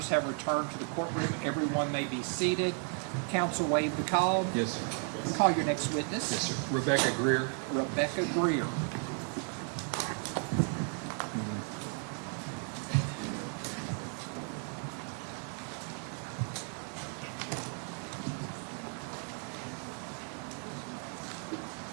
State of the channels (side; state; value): left; quieter; 39.6 dB